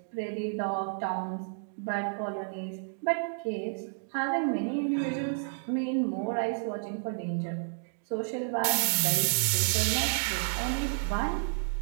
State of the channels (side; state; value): left; silent; digital silence